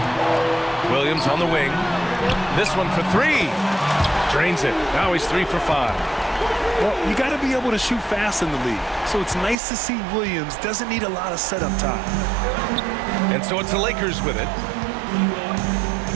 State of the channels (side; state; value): left; drops out; at 9.6 s